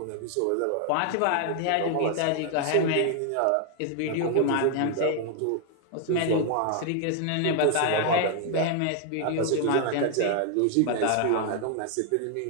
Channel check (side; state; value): both; different; correlation 0.00